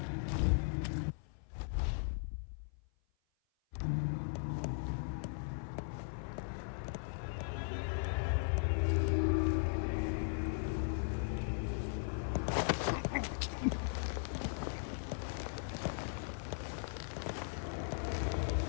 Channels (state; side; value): silent; right; 52 dB below the other